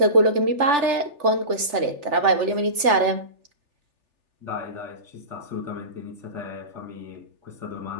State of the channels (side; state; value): left; late; 3.4 ms